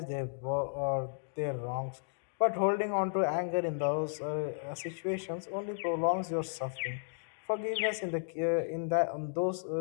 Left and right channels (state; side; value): silent; right; digital silence